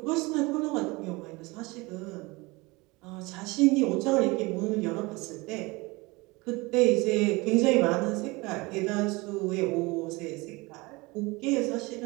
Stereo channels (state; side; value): quieter; left; 24.0 dB